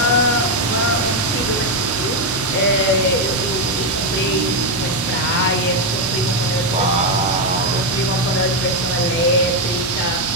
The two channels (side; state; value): both; normal; correlation 0.04